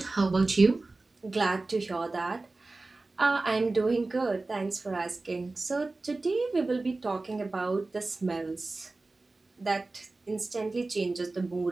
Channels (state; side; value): quieter; left; 3.3 dB